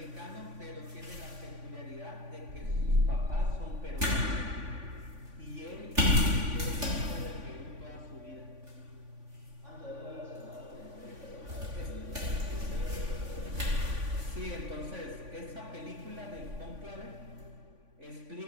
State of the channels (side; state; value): left; late; 3.5 ms